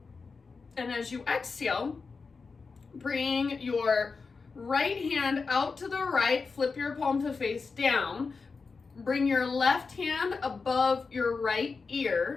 And as you exhale, bring your right hand out to the right, flip your palm to face down. Bring your left hand above your right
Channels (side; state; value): right; quieter; 4.6 dB